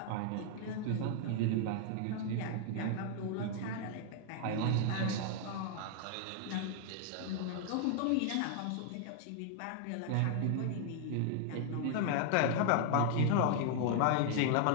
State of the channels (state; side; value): different; both; correlation 0.00